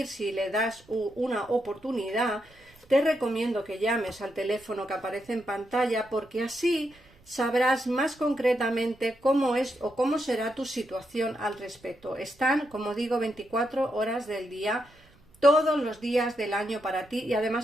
si le das una oportunidad, te recomiendo que llames al teléfono que aparece en pantalla, porque así sabrás más concretamente cómo es o cómo será tu situación al respecto. Están, como digo, 24 horas del día, todos los días del año para ti, y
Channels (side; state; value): right; noise; rumble, 29 dB below the sound